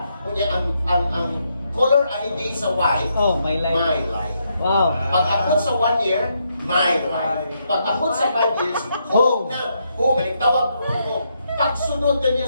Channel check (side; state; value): both; inverted; correlation -0.78